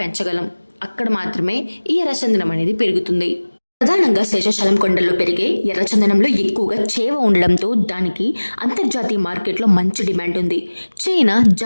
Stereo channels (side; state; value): both; inverted; correlation -1.00